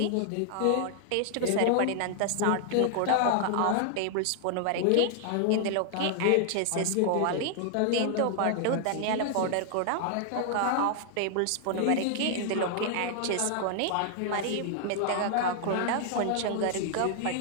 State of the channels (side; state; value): both; different; correlation 0.00